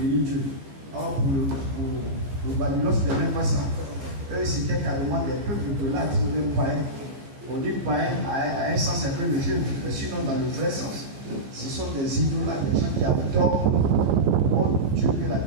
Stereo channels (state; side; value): late; left; 15 ms